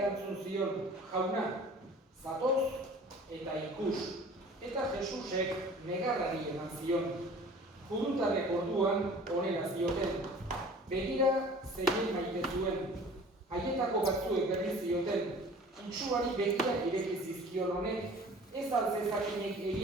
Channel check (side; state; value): both; normal; correlation 0.46